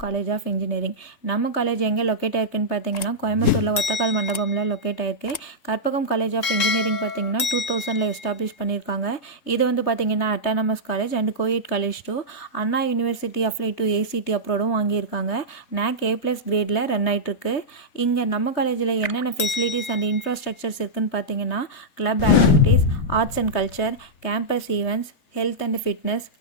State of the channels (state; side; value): late; right; 3.7 ms